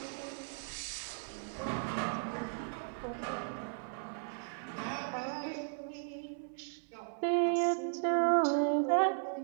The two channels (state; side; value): silent; left; 54 dB below the other